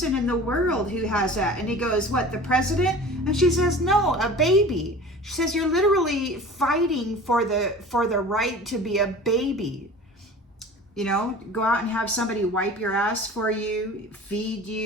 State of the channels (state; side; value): normal; both; correlation 0.39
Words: in the world who has that. And he goes, what, the president? And she says, no, a baby. She says, you're literally fighting for the right to be a baby. You know, go out and have somebody wipe your ass for you, feed